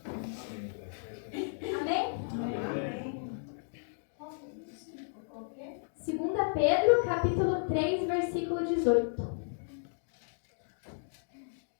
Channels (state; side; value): silent; right; digital silence